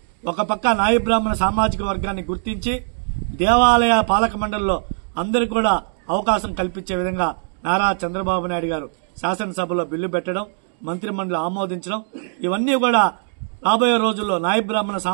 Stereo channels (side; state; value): left; silent; digital silence